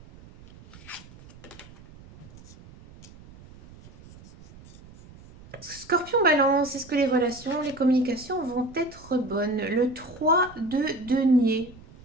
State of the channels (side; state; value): right; noise; rumble, 21 dB below the sound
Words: Scorpion Balance, est-ce que les relations, les communications vont être bonnes? Le 3 de denier.